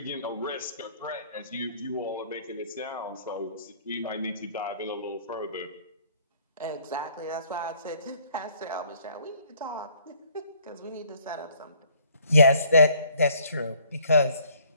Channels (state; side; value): inverted; both; correlation -0.60